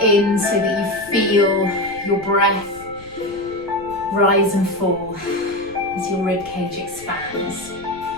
in so that you feel your breath rise and fall as your ribcage expands.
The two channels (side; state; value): left; noise; rumble, 21 dB below the sound